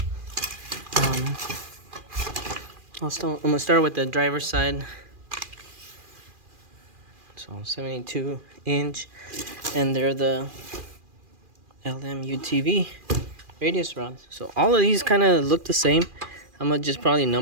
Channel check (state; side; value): late; left; 2.4 ms